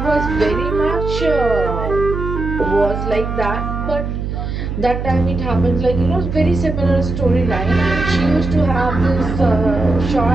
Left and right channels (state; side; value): noise; right; hum, 4 dB below the sound